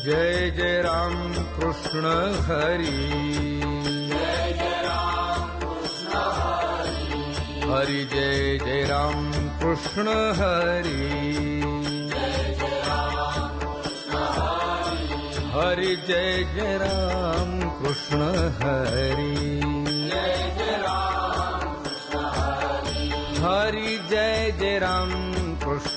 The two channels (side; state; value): both; identical; correlation 1.00